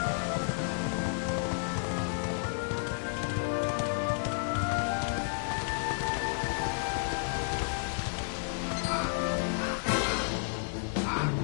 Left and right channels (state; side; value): silent; right; digital silence